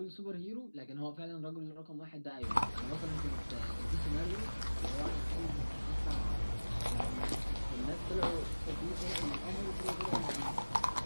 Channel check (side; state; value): both; inverted; correlation -1.00